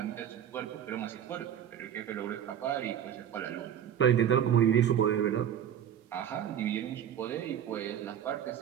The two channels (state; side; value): quieter; left; 9.7 dB